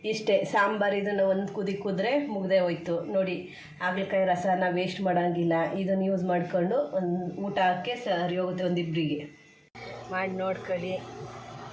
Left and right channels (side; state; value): both; identical; correlation 1.00